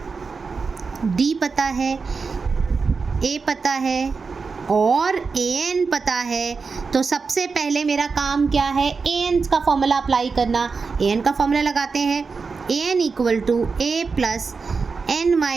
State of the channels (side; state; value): left; quieter; 4.8 dB